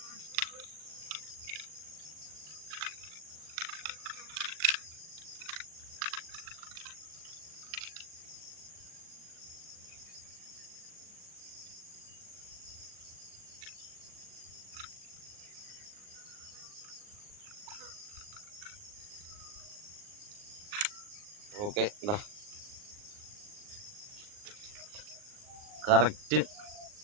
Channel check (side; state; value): left; late; 39 ms